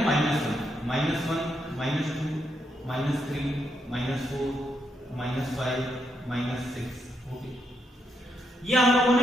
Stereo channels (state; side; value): normal; both; correlation 0.79